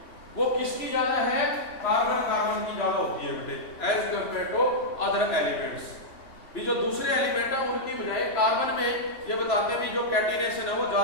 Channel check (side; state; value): right; late; 3.0 ms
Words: वो किसकी ज्यादा है, कार्बन कार्बन की ज्यादा होती है बेटे, as compare to other elements. भी जो दूसरे एलिमेंट है उनकी बजाय कार्बन में ये बताते हैं भी जो कैटिनेशन है वो